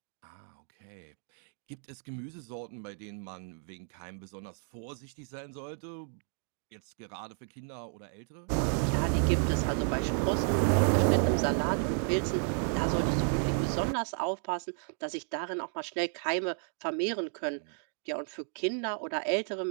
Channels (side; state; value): left; silent; 56 dB below the other